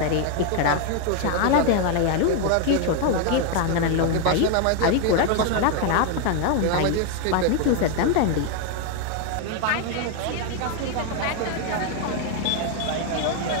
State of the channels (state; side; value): different; both; correlation 0.01